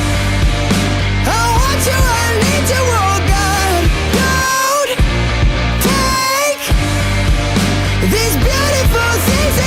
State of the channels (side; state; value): both; identical; correlation 1.00